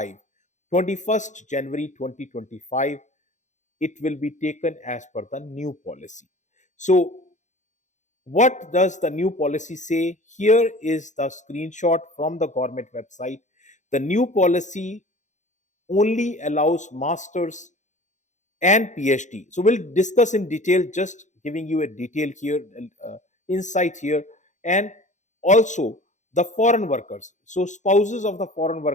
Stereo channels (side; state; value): right; late; 0.35 ms